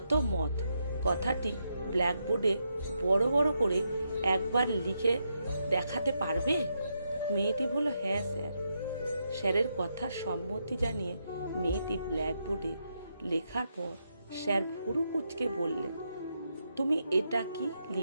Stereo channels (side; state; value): both; inverted; correlation -0.82